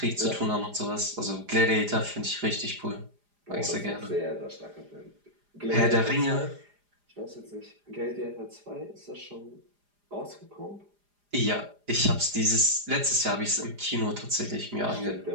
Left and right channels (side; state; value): left; late; 4.9 ms